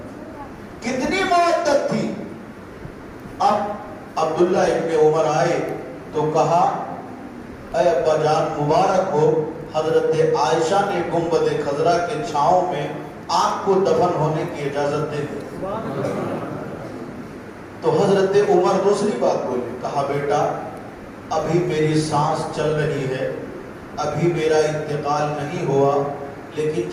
کتنی مودت تھی۔ اب عبداللہ ابن عمر آئے تو کہا، اے ابا جان مبارک ہو، حضرت عائشہ نے گنبد خضرا کے چھاؤں میں آپ کو دفن ہونے کی اجازت دے دی۔ تو حضرت عمر دوسری بات بولے، کہا بیٹا ابھی میری سانس چل رہی ہے، ابھی میرا انتقال نہیں ہوا، لیکن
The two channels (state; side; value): identical; both; correlation 1.00